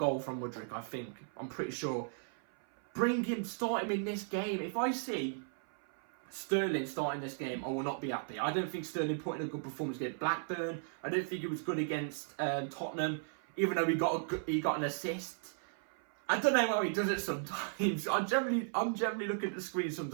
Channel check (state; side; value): silent; left; 54 dB below the other